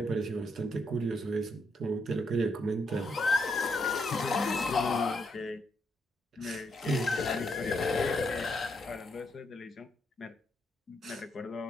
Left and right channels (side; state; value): both; normal; correlation 0.78